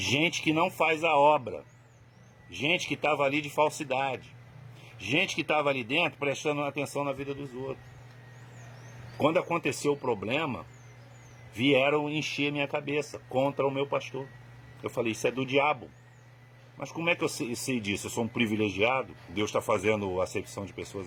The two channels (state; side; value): identical; both; correlation 1.00